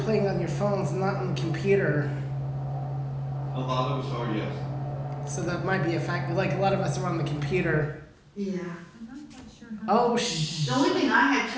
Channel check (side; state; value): both; identical; correlation 1.00